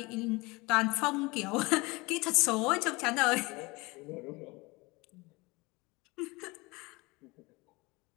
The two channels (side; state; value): right; quieter; 24.2 dB